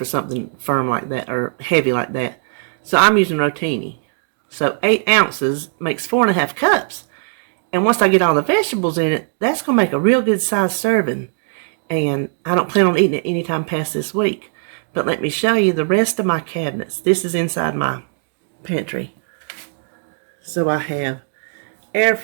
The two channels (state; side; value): silent; left; 59 dB below the other